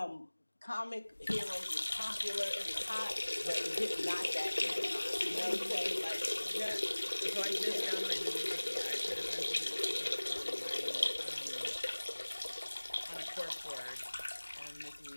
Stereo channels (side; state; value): both; inverted; correlation -1.00